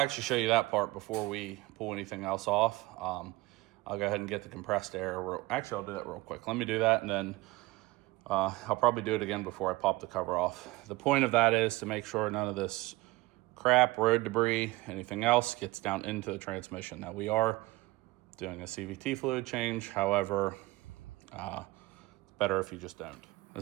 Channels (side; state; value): left; quieter; 20.9 dB